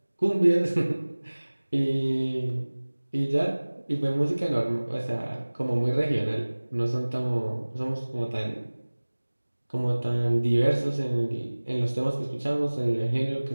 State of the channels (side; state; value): both; inverted; correlation -1.00